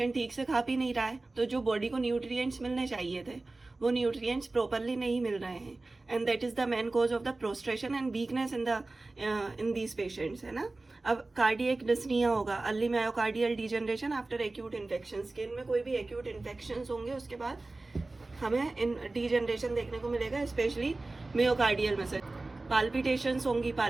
ठीक से खा पी नहीं रहा है, तो जो बॉडी को न्यूट्रिएंट्स मिलने चाहिए थे वो न्यूट्रिएंट्स प्रॉपरली नहीं मिल रहे हैं and that is the main cause of the prostration and weakness in these patients, है ना। अब कार्डियक डिस्निया होगा, early myocardial degeneration after acute infection. Skin में कोई भी एक्यूट इन्फेक्शन होंगे उसके बाद हमें इन डिजनरेशन देखने को मिलेगा, स्पेशली मायोकार्डियल मसल। पाल्पिटेशंस होंगी,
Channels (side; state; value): left; quieter; 3.2 dB